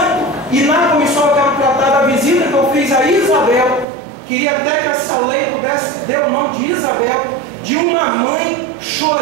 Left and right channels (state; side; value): drops out; left; at 3.9 s